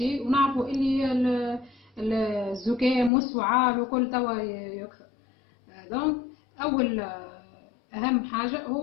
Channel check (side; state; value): right; drops out; at 3.1 s